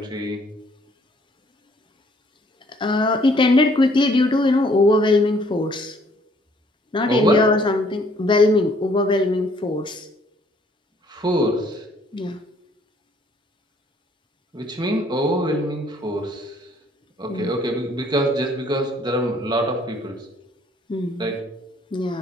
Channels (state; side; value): normal; both; correlation 0.62